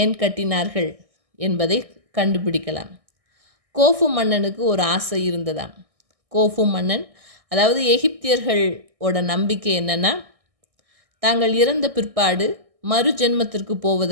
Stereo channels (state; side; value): late; left; 1.6 ms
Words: கட்டினார்கள் என்பதை கண்டுபிடிக்கலாம். கோஃபு மன்னனுக்கு ஒரு ஆசை இருந்ததாம். கோஃபு மன்னன், அதாவது எகிப்தியர்களோட நம்பிக்கை என்னென்னா, தாங்கள் இறந்த பிற்பாடு மறு ஜென்மத்திற்கு